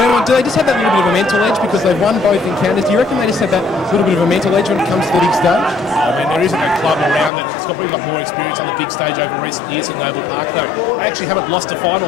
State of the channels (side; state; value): right; drops out; at 7.3 s